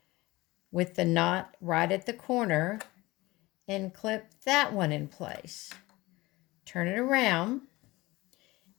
with the knot right at the corner and clip that one in place. Turn it around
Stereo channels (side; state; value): right; quieter; 20.5 dB